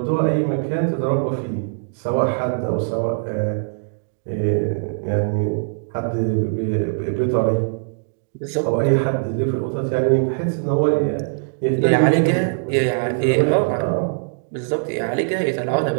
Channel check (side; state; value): left; silent; digital silence